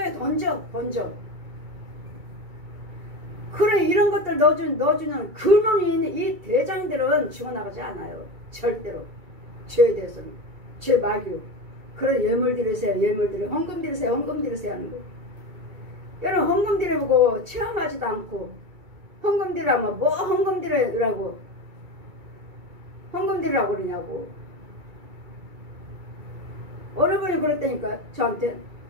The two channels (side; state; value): left; late; 2.3 ms